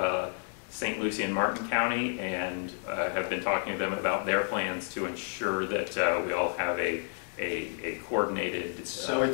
St. Lucie and Martin County, and have been talking to them about their plans to ensure that we all have a coordinated So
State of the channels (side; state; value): right; silent; 57 dB below the other